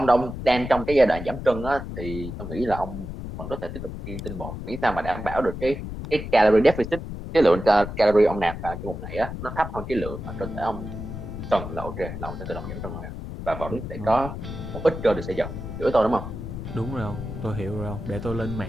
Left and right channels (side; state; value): left; noise; rumble, 8 dB below the sound